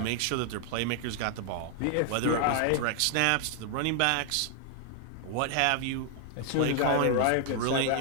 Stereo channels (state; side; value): different; both; correlation 0.00